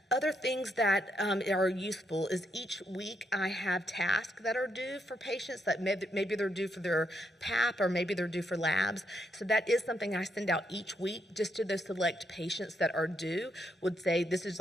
other things that are useful is each week I have tasks that are due for patients that maybe they're due for their PAP or maybe they're due for labs. So that is something I send out each week just to those select patients that are due. Would say this is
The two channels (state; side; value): normal; both; correlation 0.78